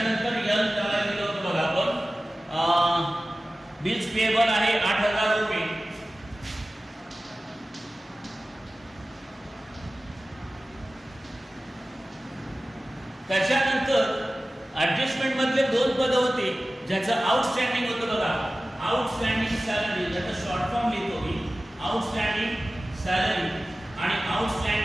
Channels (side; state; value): both; normal; correlation 0.96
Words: यल त्याला दिलं होतं बघा आपण बिल्स पेएबल आहे 8,000 रुपये. त्याच्यानंतर ऍडजस्टमेंट मधले 2 पद होते ज्याचं आउटस्टँडिंग होतं बघा. आउटस्टँडिंग सॅलरी, ज्याचं शॉर्ट फॉर्म लिहितो मी, आउटस्टँडिंग सॅलरी आणि